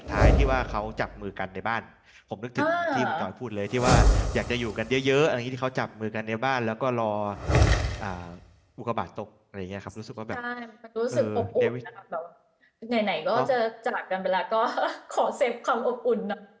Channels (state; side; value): identical; both; correlation 1.00